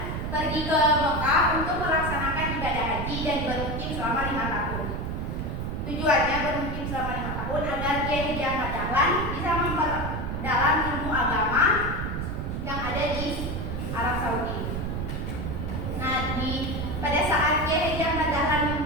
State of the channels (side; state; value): right; noise; rumble, 3 dB below the sound